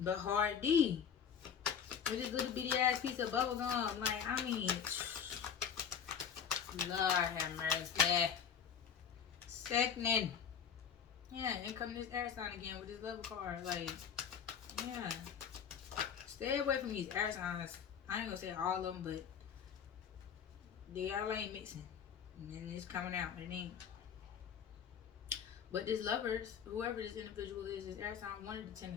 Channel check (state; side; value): quieter; right; 7.7 dB